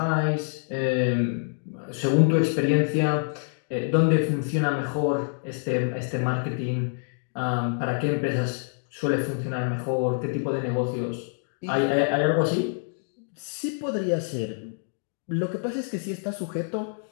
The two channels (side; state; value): right; silent; digital silence